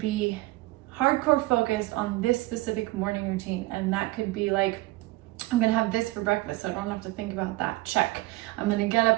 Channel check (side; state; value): left; quieter; 19.7 dB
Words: hardcore focused on this specific morning routine. And that could be like, I'm gonna have this for breakfast, so I don't have to think about that. Check. I'm gonna get